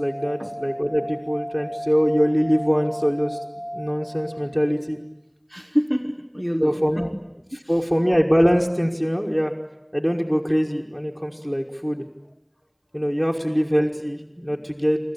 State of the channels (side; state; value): both; identical; correlation 1.00